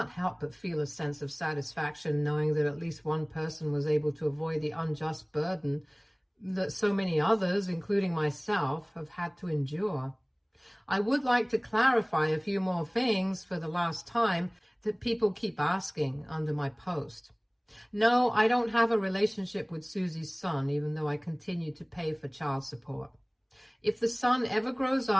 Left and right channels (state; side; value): identical; both; correlation 1.00